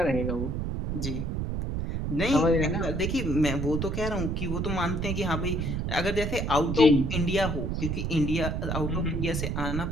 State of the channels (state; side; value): noise; right; rumble, 2 dB below the sound